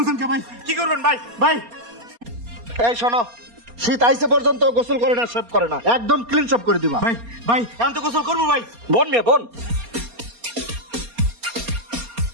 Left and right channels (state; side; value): late; left; 4.3 ms